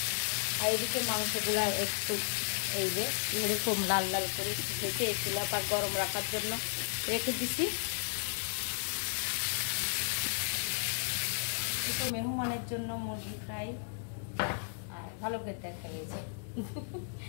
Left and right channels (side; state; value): right; silent; digital silence